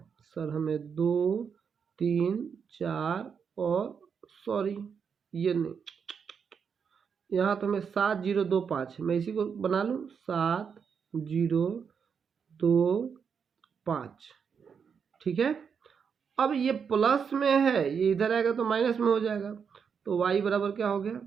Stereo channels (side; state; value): left; quieter; 6.6 dB